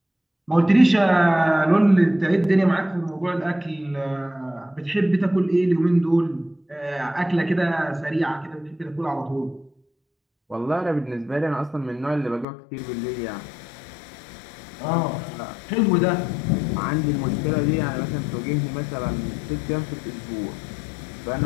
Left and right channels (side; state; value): right; drops out; at 12.5 s